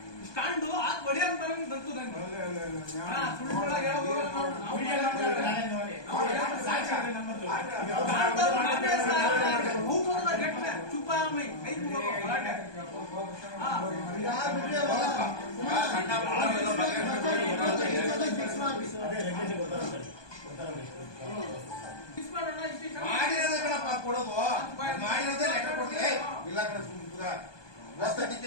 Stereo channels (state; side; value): late; right; 1.2 ms